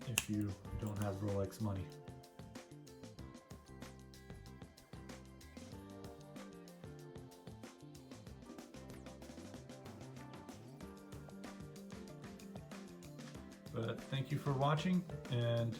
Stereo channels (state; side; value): identical; both; correlation 1.00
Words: if you don't have Rolex money. But thank you for watching, and